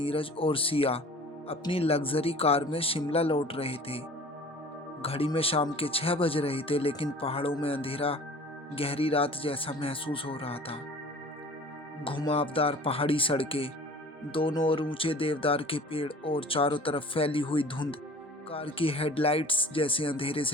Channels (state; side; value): normal; both; correlation 0.44